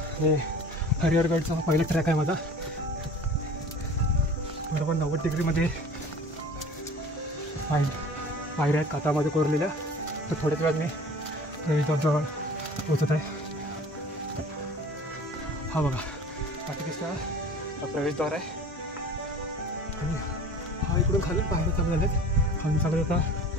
हे हरिहरगडचा पहिला ट्रॅक आहे माझा. बरोबर 90 डिग्रीमध्ये पायऱ्या आहेत कातामध्ये कोरलेल्या. तर थोड्याच वेळात मी प्रवेशद्वाराजवळ पोचत आहे. हा बघा आता दिसता हा प्रवेशद्वार आहे आणि हा इकडून खालून पायऱ्या चालू झाल्यात. खालून चालत आता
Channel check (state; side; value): normal; both; correlation 0.44